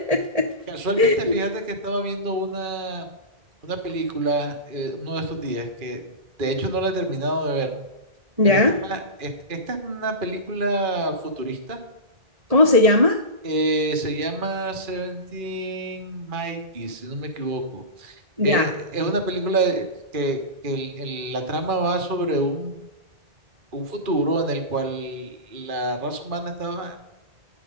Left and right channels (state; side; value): late; left; 2.4 ms